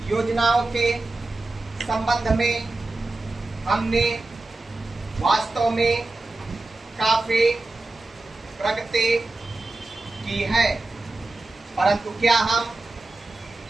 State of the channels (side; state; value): left; quieter; 3.0 dB